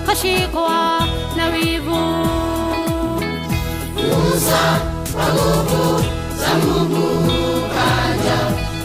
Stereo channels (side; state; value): both; identical; correlation 1.00